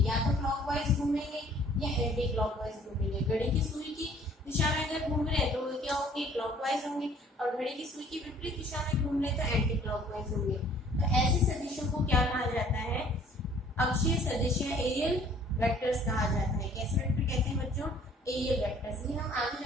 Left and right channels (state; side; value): normal; both; correlation 0.56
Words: या तो क्लॉकवाइज घूमेंगे या एंटी क्लॉकवाइज घूमेंगे। घड़ी की सुई की दिशा में अगर घूम रहे हैं तो वो क्या होंगे? क्लॉकवाइज होंगे। और घड़ी की सुई की विपरीत दिशा में घूम रहे तो एंटी क्लॉकवाइज होंगे। तो ऐसे सदिशों को क्या कहा जाता है? अक्षीय सदिश या एरियल वेक्टर्स कहा जाता है। कैसे वेक्टर कहते हैं बच्चों? Aerial vectors. ये हम आगे